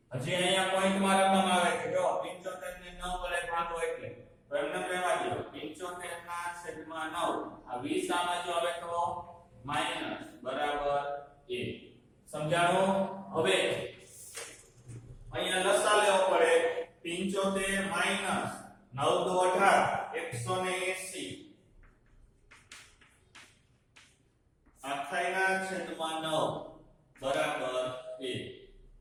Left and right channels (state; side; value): identical; both; correlation 1.00